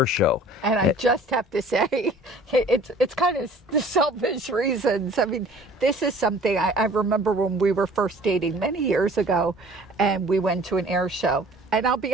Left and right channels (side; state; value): both; normal; correlation 0.51